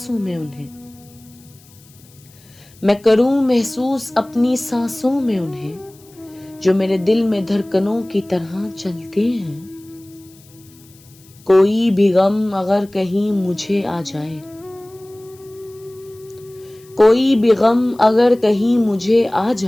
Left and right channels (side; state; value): left; noise; hiss, 27 dB below the sound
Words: میں انہیں، میں کروں محسوس اپنی سانسوں میں انہیں، جو میرے دل میں دھڑکنوں کی طرح چلتے ہیں۔ کوئی بھی غم اگر کہیں مجھے آ جائے، کوئی بھی غم اگر کہیں مجھے آ